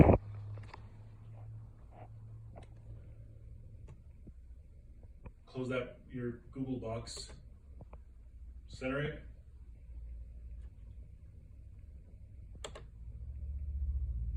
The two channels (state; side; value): identical; both; correlation 1.00